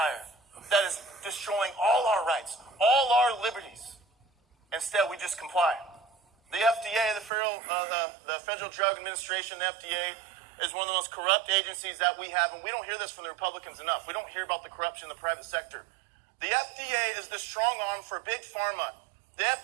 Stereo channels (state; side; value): drops out; left; at 7.3 s